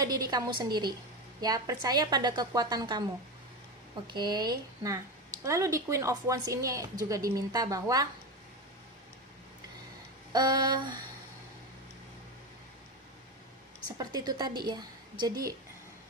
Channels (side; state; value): both; normal; correlation 0.19